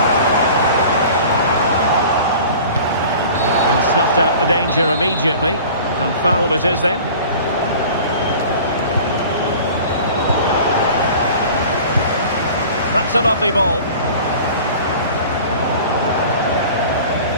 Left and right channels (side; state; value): both; inverted; correlation -0.42